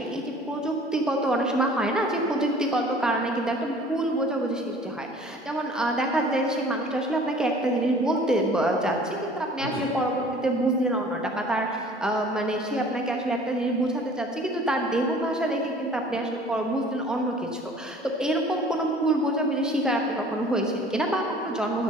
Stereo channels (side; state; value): both; normal; correlation 0.49